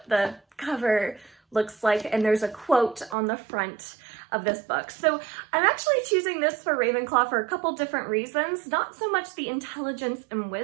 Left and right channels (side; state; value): left; drops out; at 3.2 s